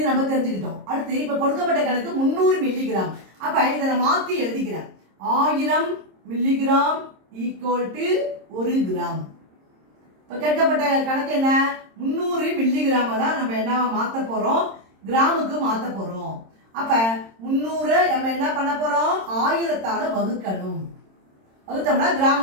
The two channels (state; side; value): late; left; 26 ms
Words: நம்ம தெரிஞ்சுக்கிட்டோம். அடுத்து இப்போ கொடுக்கப்பட்ட கணக்கு 300 மில்லிகிராம். அப்போ இதை நான் மாற்றி எழுதிக்கிறேன். 1000 மில்லிகிராம் ஈக்குவல் டு 1 கிராம். இப்போ கேட்கப்பட்ட கணக்கு என்ன? 300 மில்லிகிராமை தான் நம்ம என்ன மாற்ற போகிறோம்? கிராமுக்கு மாற்ற போகிறோம். அப்போ 300 நம்ம என்ன பண்ண போகிறோம்? 1000ஆல் வகுக்கணும். வகுத்தோம்னா